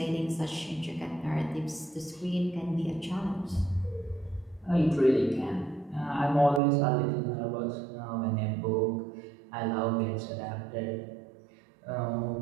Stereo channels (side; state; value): left; drops out; at 6.6 s